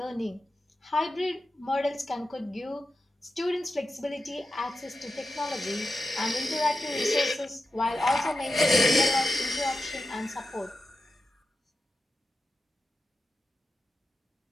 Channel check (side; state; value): both; normal; correlation 0.90